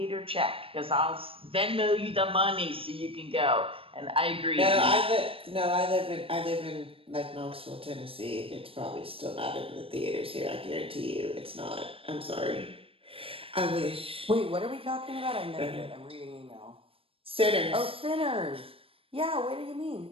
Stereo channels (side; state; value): left; late; 0.27 ms